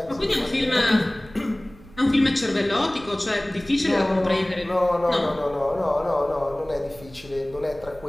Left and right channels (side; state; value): right; noise; rumble, 22 dB below the sound